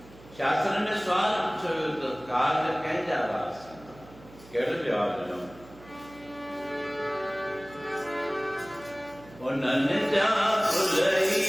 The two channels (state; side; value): noise; right; hum, 21 dB below the sound